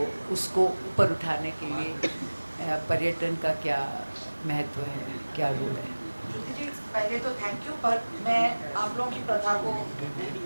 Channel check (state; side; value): inverted; both; correlation -1.00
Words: उसको ऊपर उठाने के लिए पर्यटन का क्या महत्व है, क्या रोल है. श्रुति जी, पहले तो थैंक यू, पर मैं आप लोगों की प्रथा को